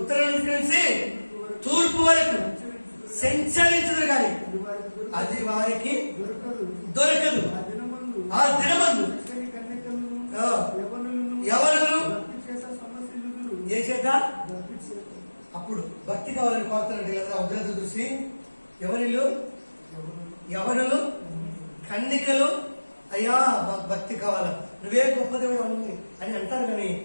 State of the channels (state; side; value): inverted; both; correlation -1.00